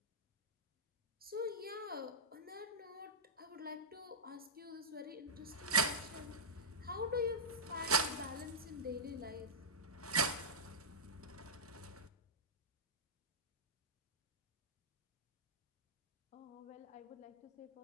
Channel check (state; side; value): normal; both; correlation -0.11